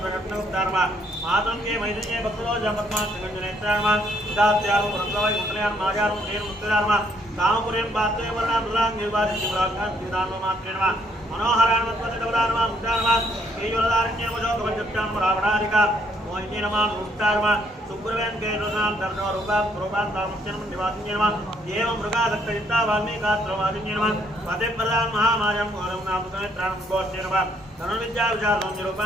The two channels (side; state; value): both; normal; correlation 0.69